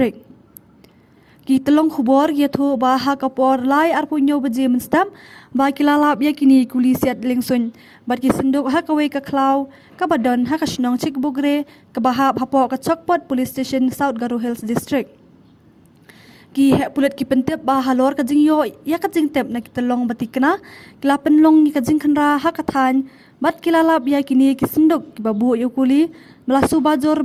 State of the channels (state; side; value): identical; both; correlation 1.00